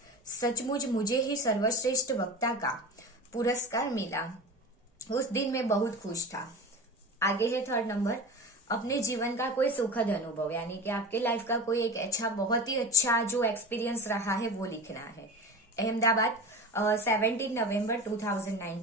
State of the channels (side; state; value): both; normal; correlation 0.31